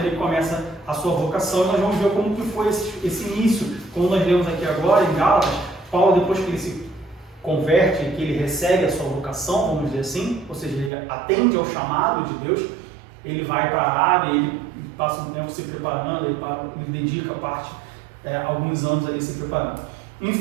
começa a sua vocação, e nós vamos ver como que foi esse início, como nós lemos aqui agora em Gálatas. Paulo, depois que ele se converte, que ele recebe a sua vocação, vamos dizer assim, ou seja, ele atende ao chamado de Deus, ele vai para a Arábia, ele passa um tempo se preparando, ele dedica alguns anos ali se preparando.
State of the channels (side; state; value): left; drops out; at 10.9 s